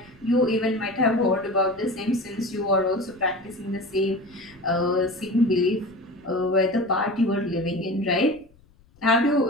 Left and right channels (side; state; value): left; noise; rumble, 29 dB below the sound